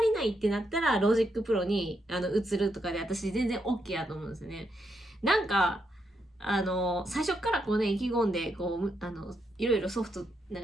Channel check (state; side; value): normal; both; correlation 0.80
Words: りないってなったらロジックプロに移るとかで私全然 OK やと思うんですよね。なんか最初からこうね、意気込んで、こう、いろいろソフト、なん